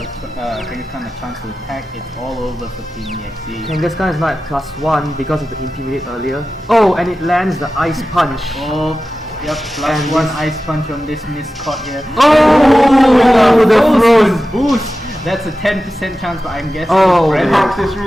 a chance to attack, it's all over for Team EXE. Kangaskhan is now at +1 because of the Intimidate earlier. Oh, and it lands the Ice Punch. Oh, yep, And +1 this- ice punch on this Miscott here. Oh, the froze. Boost! That's a 10% chance, but I'm guessing Oh, Red yeah. Hex is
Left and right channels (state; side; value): normal; both; correlation 0.94